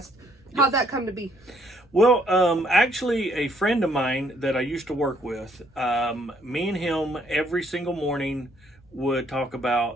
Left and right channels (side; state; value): both; normal; correlation 0.67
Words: How'd that come to be? Well, actually, a friend of mine that I used to work with, me and him every single morning would talk